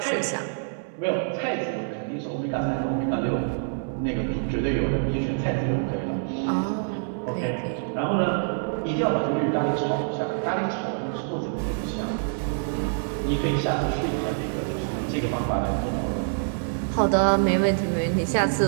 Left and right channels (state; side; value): silent; left; 61 dB below the other